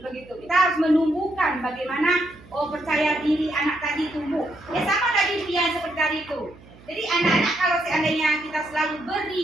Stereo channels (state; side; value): noise; right; hum, 23 dB below the sound